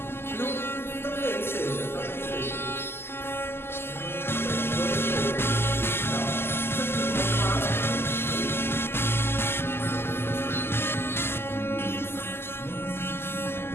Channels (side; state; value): right; late; 0.12 ms